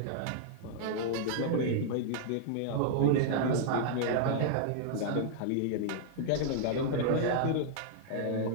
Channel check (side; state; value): both; different; correlation -0.01